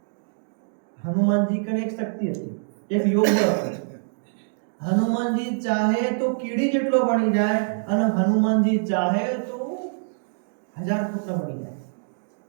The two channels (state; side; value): silent; left; digital silence